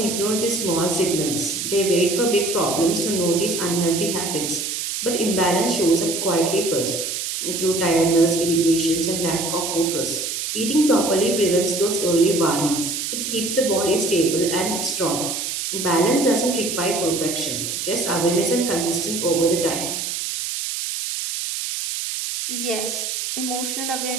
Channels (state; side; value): noise; right; hiss, 3 dB below the sound